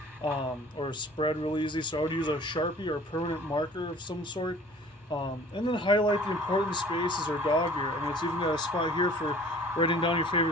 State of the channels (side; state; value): both; normal; correlation 0.49